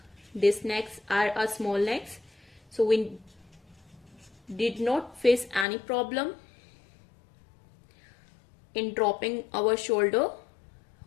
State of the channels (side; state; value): right; drops out; at 5.7 s